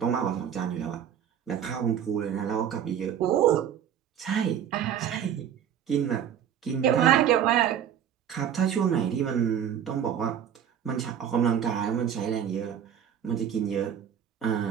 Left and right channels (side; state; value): left; quieter; 9.1 dB